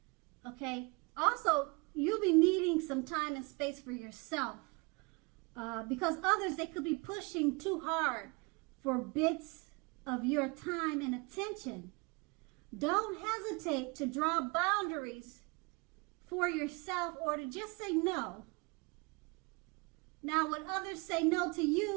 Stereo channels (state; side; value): quieter; left; 29.0 dB